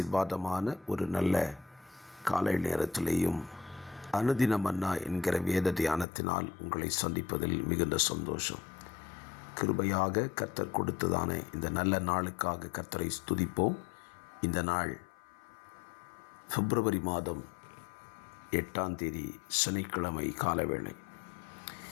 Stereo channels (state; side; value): drops out; right; at 6.1 s